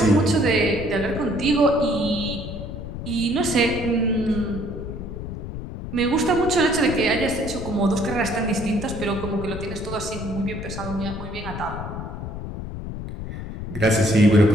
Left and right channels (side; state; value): left; noise; rumble, 8 dB below the sound